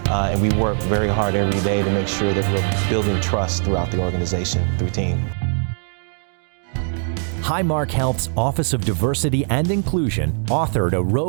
and we work very hard every day to make sure that we're building trust throughout the organization through team. Highmark Health's Office of Diversity and Inclusion authored a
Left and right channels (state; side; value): silent; left; digital silence